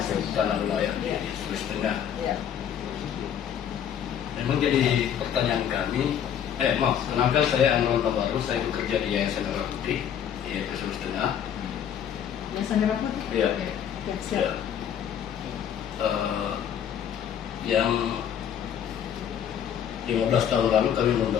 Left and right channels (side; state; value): right; quieter; 9.1 dB